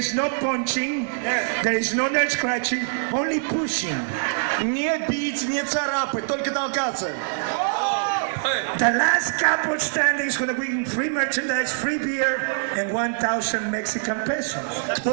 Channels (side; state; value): left; silent; digital silence